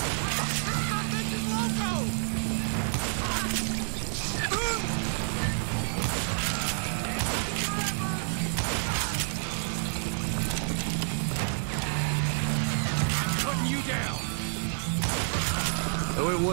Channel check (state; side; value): silent; left; digital silence